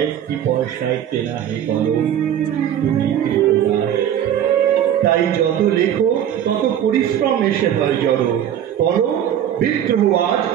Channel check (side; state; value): left; quieter; 10.2 dB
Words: পয়সায় কেনা হে কলম, তুমি কৃতদাস। তাই যত লেখো তত পরিশ্রম এসে হয় জড়ো, করো বিদ্রোহ আজ,